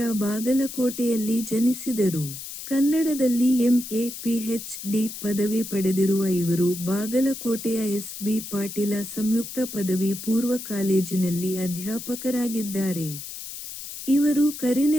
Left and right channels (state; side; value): noise; left; hiss, 10 dB below the sound